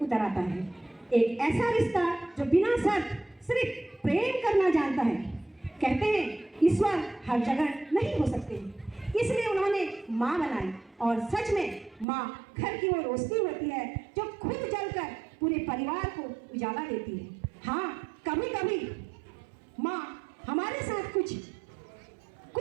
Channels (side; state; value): left; drops out; at 12.1 s